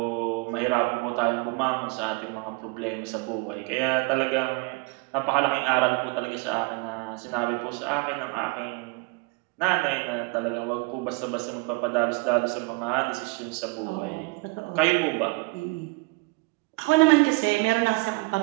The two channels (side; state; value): left; quieter; 28.1 dB